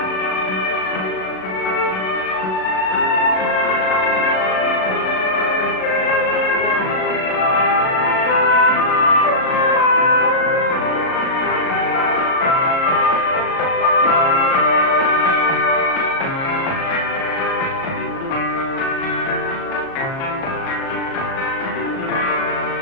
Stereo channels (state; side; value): late; right; 37 ms